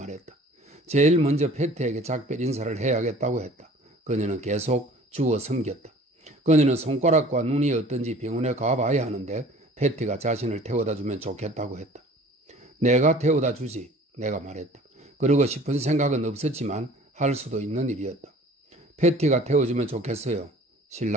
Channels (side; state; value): both; normal; correlation 0.48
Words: 제일 먼저 패티에게 작별 인사를 해야겠다고 했다. 그녀는 계속 주워 섬겼다. 그녀는 손가락과 눈이 어떤지 병원에 가봐야 하는데 패티가 자신을 태워다 주면 좋겠다고 했다. 내가 태워다 주지, 내가 말했다. 그러고 싶은 생각은 없었지만 할 수도 있는 일이었다. 패티가 태워주면 좋겠어요,